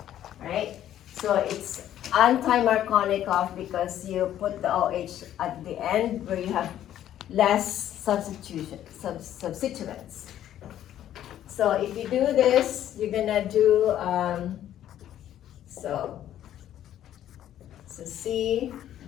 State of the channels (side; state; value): right; quieter; 11.6 dB